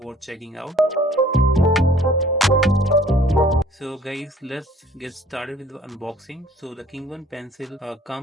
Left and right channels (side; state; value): both; normal; correlation 0.54